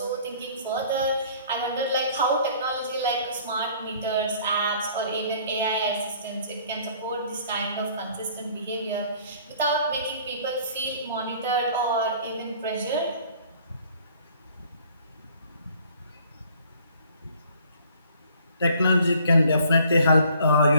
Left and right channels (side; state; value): both; inverted; correlation -0.56